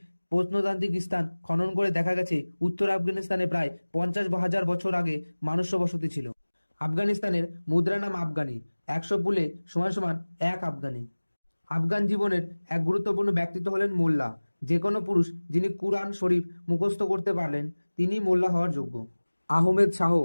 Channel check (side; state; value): both; inverted; correlation -1.00